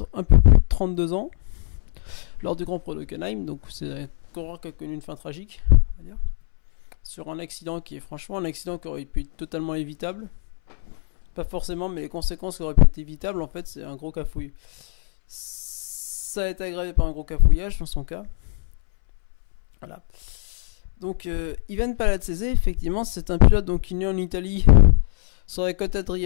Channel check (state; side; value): silent; right; 63 dB below the other